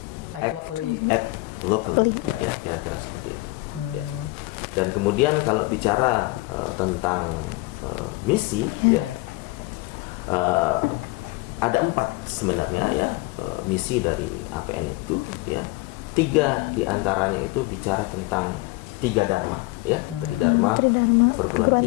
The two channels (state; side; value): quieter; right; 22.6 dB